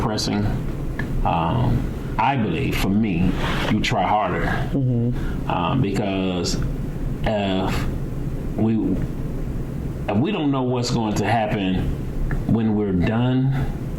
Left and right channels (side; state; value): both; identical; correlation 1.00